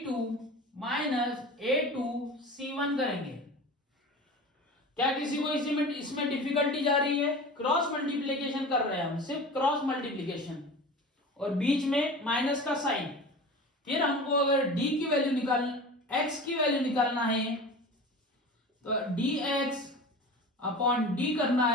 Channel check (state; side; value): normal; both; correlation 0.35